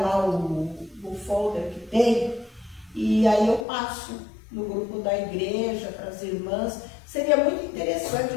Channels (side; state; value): right; drops out; at 3.7 s